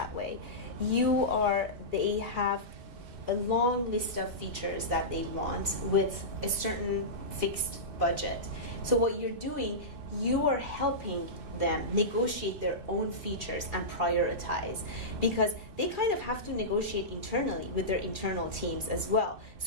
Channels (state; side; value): late; left; 2.6 ms